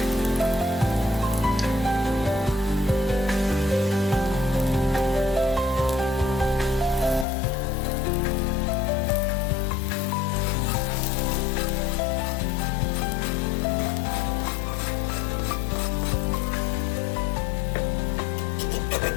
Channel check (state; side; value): drops out; right; at 7.2 s